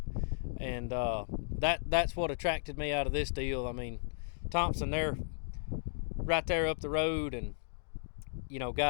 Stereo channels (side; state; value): right; silent; digital silence